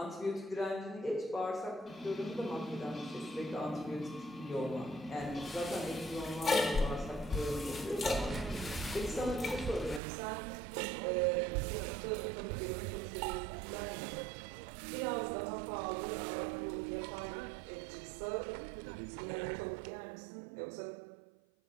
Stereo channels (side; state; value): left; drops out; at 10.0 s